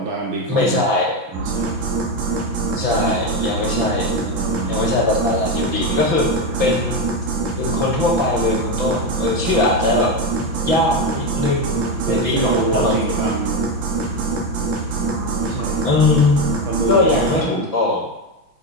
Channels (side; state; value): left; late; 5.9 ms